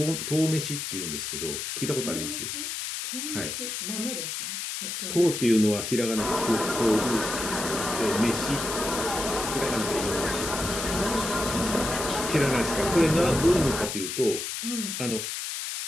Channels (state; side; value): noise; left; hiss, 4 dB below the sound